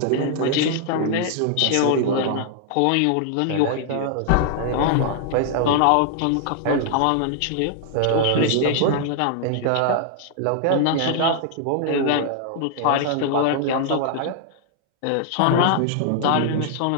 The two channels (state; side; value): different; both; correlation 0.00